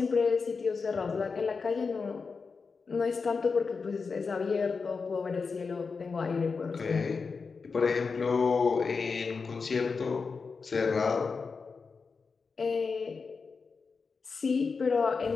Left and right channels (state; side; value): quieter; right; 4.9 dB